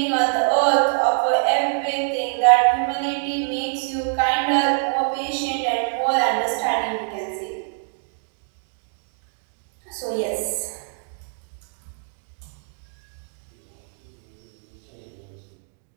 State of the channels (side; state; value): left; silent; digital silence